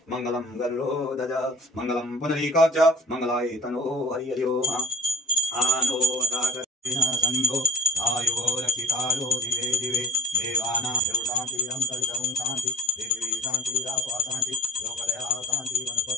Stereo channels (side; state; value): both; normal; correlation 0.47